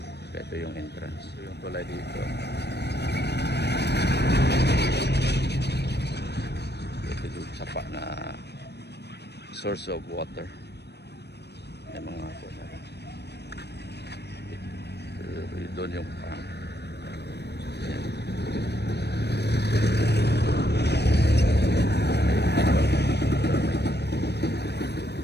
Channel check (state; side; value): late; right; 0.49 ms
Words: Ito yung entrance. Ito yung tulay dito. Ito yung sapa na source of water. May mga Doon yung farm. Yan.